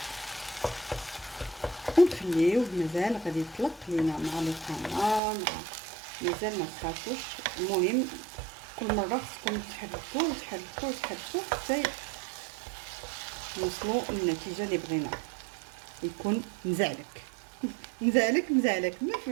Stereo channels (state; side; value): drops out; left; at 5.2 s